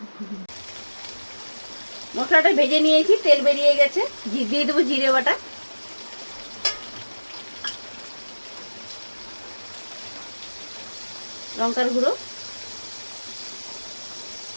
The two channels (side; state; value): both; inverted; correlation -1.00